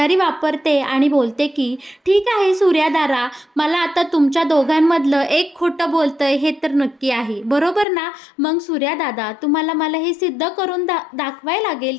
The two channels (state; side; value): drops out; right; at 7.9 s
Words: वापरते आणि बोलते की "ठीक आहे सूर्यादारा, मला आता तुमच्या दोघांमधलं एक खोटं बोलतंय हे तर नक्की आहे, बरोबर ना? मग सूर्यादादा तुम्हाला मला हे सिद्ध करून दाखवायला लागेल